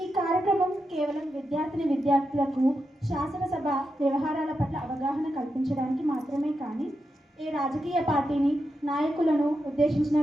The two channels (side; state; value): both; normal; correlation 0.87